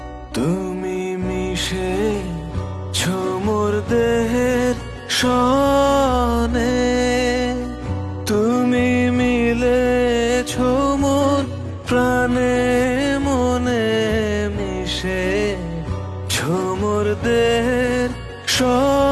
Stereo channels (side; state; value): both; identical; correlation 1.00